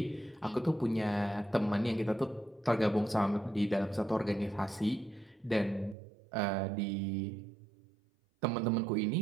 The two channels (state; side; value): drops out; left; at 6.0 s